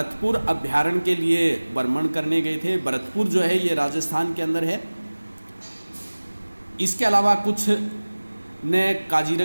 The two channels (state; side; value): inverted; both; correlation -1.00